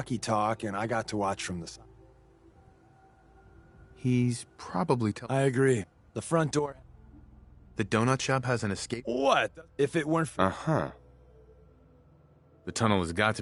talk, and I got to watch from the side. He's probably I agree. The front door... The donut shop has an escape... What? If it weren't for... Uh-huh. The tunnel has got to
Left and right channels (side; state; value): both; identical; correlation 1.00